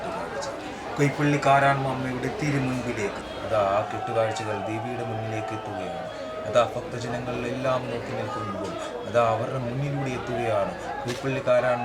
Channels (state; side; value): identical; both; correlation 1.00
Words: കൈപ്പള്ളിക്കാരാമ്മ അമ്മയുടെ തിരുമുൻപിലേക്ക് അതാ ആ കെട്ടുകാഴ്ചകൾ ദേവിയുടെ മുന്നിലേക്ക് എത്തുകയാണ്. അതാ ഭക്തജനങ്ങളിലെല്ലാം നോക്കി നിൽക്കുമ്പോൾ അതാ അവരുടെ മുന്നിലൂടെ എത്തുകയാണ്